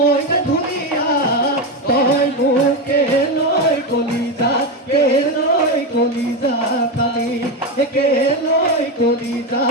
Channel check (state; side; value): normal; both; correlation 0.13